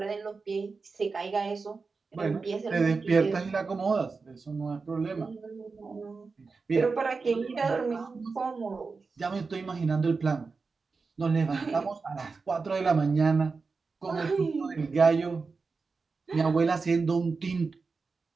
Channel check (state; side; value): quieter; left; 4.5 dB